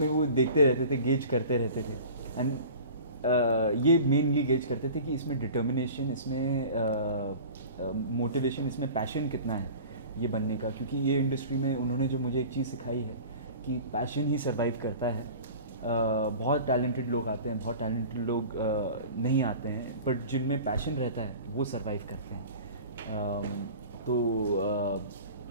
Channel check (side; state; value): both; inverted; correlation -0.40